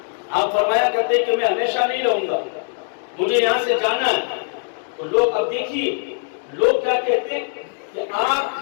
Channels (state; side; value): silent; right; digital silence